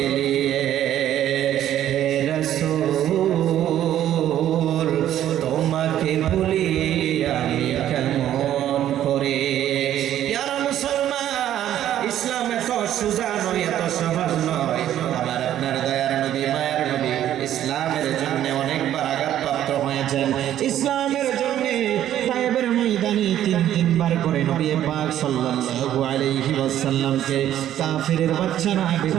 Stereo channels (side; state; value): left; quieter; 11.7 dB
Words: হে রাসূল তোমাকে ভুলি আমি কেমন করে। ইয়ারা মুসলমান, ইসলাম এত সোজা নয়, এত সহজ নয়। আমার আপনার দয়ার নবী, মায়ের নবী ইসলামের জন্য অনেকবার আঘাতপ্রাপ্ত হয়েছেন ইসলামের জন্য। তায়েবের ময়দানে তিনবার করে নবী পাক সাল্লাল্লাহু আলাইহি ওয়াসাল্লামকে কাফিরের বাচ্চারা